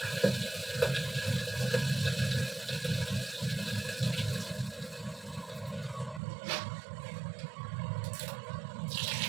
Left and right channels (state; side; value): drops out; left; at 6.2 s